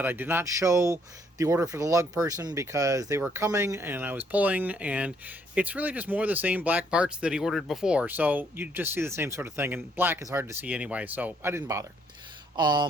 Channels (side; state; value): both; normal; correlation 0.68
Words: I did not show the order for the lug person because they were coming and I was pulling, and it's really just more of the same black parts that he ordered before, so you just see the same sort of thing, and black is hard to see anyway, so I didn't bother.